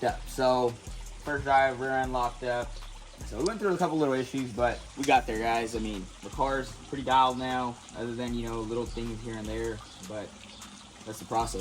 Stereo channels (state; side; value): identical; both; correlation 1.00